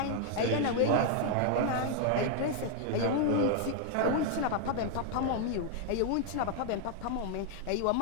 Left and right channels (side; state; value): both; different; correlation 0.00